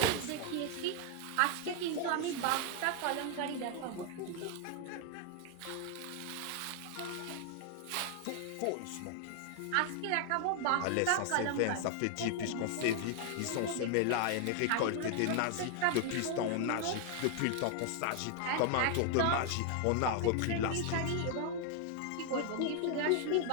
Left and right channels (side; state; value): both; different; correlation 0.00